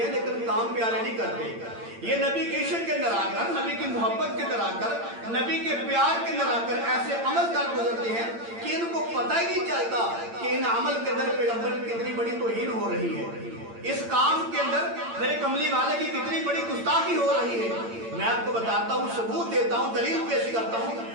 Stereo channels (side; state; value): left; late; 8.8 ms